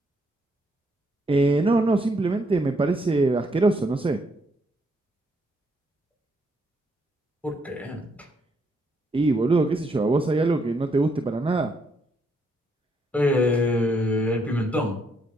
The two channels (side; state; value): both; normal; correlation 0.74